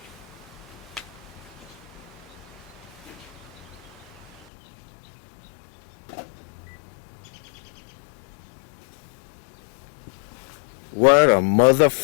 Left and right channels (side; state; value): right; drops out; at 4.5 s